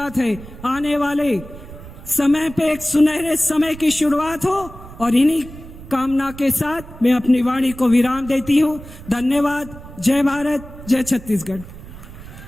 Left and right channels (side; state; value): right; noise; rumble, 16 dB below the sound